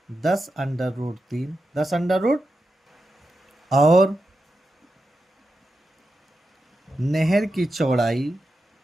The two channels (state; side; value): normal; both; correlation 0.89